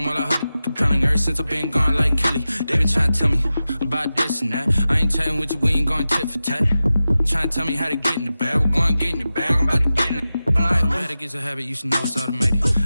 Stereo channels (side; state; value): both; inverted; correlation -0.94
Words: while I heard it compelling. Ever since I've been gone like Kelly, they been trying to tell me about this and that. I ain't chatting with you, we ain't going tit for tat. Trying to tell me how to get in the bag, we're going to get in the bag, I'm about to get in it. I'm like, automatic is a habit, you should know it's automated.